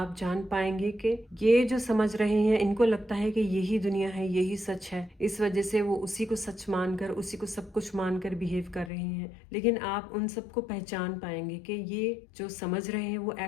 जान पाएंगे कि ये जो समझ रहे हैं, इनको लगता है कि यही दुनिया है, यही सच है, इस वजह से वो उसी को सच मानकर, उसी को सब कुछ मानकर बिहेव कर रहे हैं। लेकिन आप उन सबको पहचान पाएंगे कि ये जो समझ रहे हैं वो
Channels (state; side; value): drops out; right; at 8.9 s